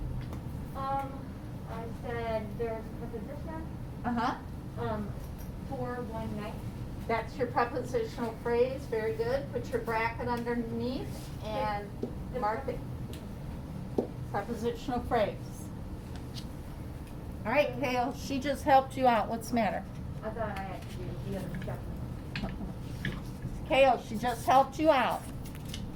I said there's a preposition, Uh-huh. for one night. That's your prepositional phrase. Very good. Put your bracket underneath and mark it. Prepositional phrase. All right, Kale, she just helped you out. What's the matter? I thought I had to do the other stuff. Kale, she just helped you out.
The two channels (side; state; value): both; identical; correlation 1.00